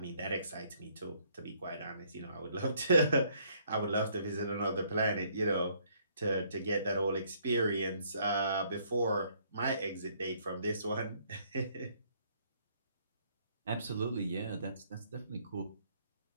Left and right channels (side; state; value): both; inverted; correlation -0.65